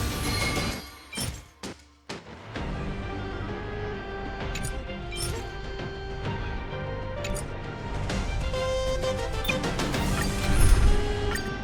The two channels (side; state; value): both; identical; correlation 1.00